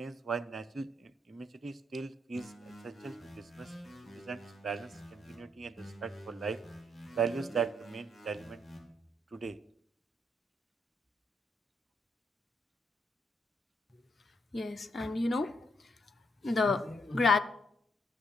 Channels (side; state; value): both; normal; correlation 0.75